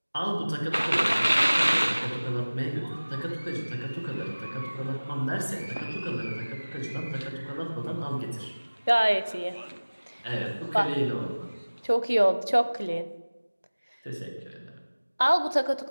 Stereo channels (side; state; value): both; inverted; correlation -1.00